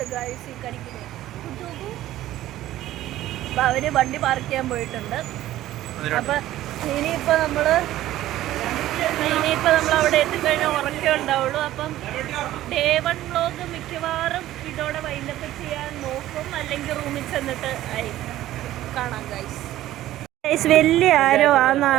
ഗൈസ് ഈ കരിക്കിന്. അപ്പൊ അവര് വണ്ടി പാർക്ക് ചെയ്യാൻ പോയിട്ടുണ്ട്. അപ്പൊ ഇനിയിപ്പോ നമ്മള് അവിടെ എത്തിക്കഴിഞ്ഞാൽ ഉറക്കേ ഉണ്ടാവുള്ളൂ. അപ്പം ഡേ 1 വ്ലോഗ് മിക്കവാറും ഇതോടെ വൈൻഡപ്പ് ചെയ്യാൻ നോക്കും, അല്ലെങ്കിൽ റൂമിൽ ചെന്നിട്ട് കാണാം ഗൈസ്. വലിയ ആരോ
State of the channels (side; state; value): left; quieter; 14.3 dB